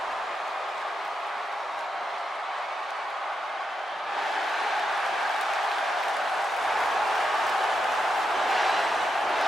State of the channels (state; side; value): normal; both; correlation 0.85